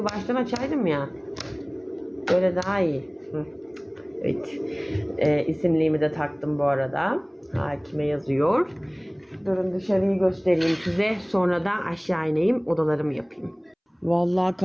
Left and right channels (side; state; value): both; identical; correlation 1.00